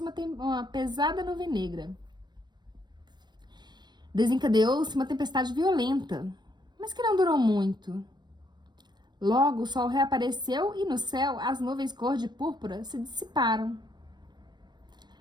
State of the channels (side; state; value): left; late; 0.21 ms